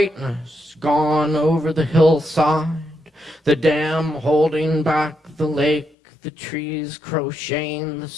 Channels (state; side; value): drops out; right; at 5.9 s